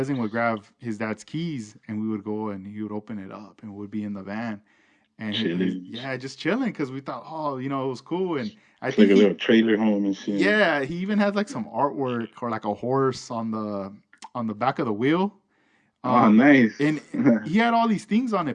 would grab his dad's keys, and we would go and he would open it up and would be in the van, and he's Chilling. yeah, just chilling, because we thought, oh, it was cool. And I It's think like a he little trailer home and shit. yeah, he even had like some artwork or like a horse on the back of the wheel. Oh, um nice. and he had all these things on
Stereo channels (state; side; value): identical; both; correlation 1.00